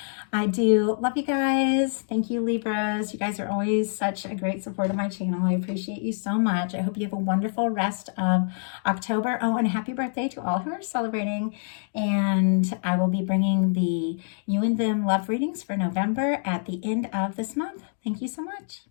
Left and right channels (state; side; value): silent; right; 61 dB below the other